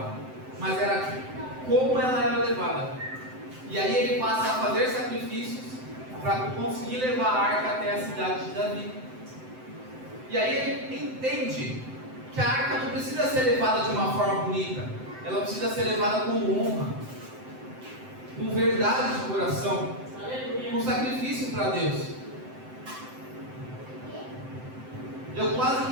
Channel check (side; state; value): left; late; 7.8 ms